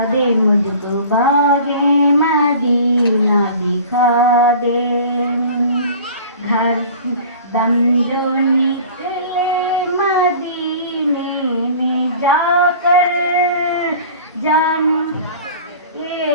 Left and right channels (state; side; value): inverted; both; correlation -0.43